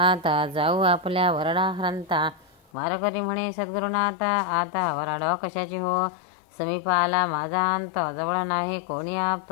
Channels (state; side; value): drops out; right; at 2.6 s